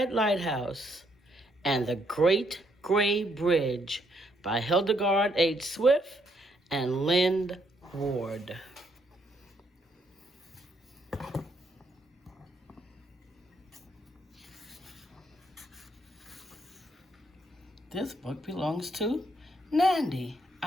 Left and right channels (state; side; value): normal; both; correlation 0.73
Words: Lighthouse and the Great Gray Bridge by Hildegard H. Swift and Lynn Ward. This book belongs to Nandy.